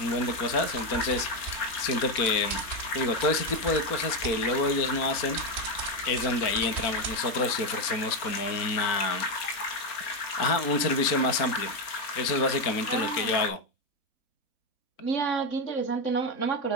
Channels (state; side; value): late; right; 4.4 ms